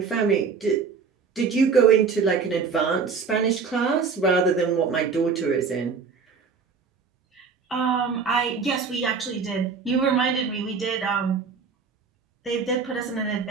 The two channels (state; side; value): quieter; left; 5.4 dB